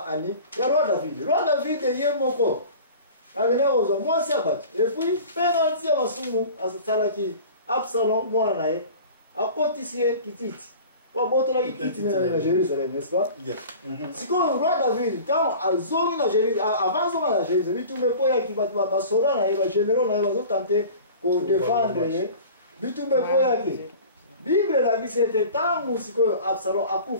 ani ya roi David ye moko avene ozwa mwasi abatu et puis penalty ya masumu asalaki Absalom mwana naye akotisie kititi. Kwa boto la kititi na Jérusalem, n'est-ce pas? Yes. Si quand le roi David, quand azongi na Jérusalem, avant zonga na Jérusalem, bitumbe po ya kibatu ba sora na ba généraux na ba tenter ko défendre ye. Bitumbe po ya ki. Bible la bi c'était tangu siko Absalom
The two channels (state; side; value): inverted; both; correlation -0.40